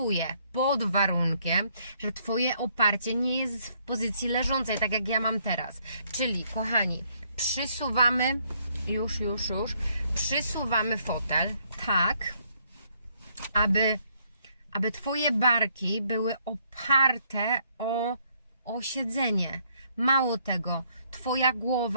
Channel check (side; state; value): both; inverted; correlation -0.69